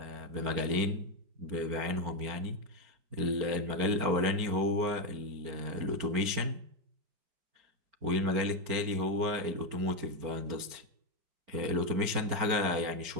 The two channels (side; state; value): left; late; 4.5 ms